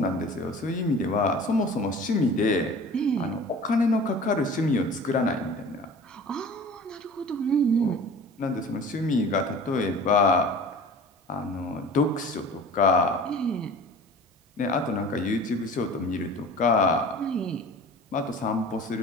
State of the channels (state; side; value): normal; both; correlation 0.41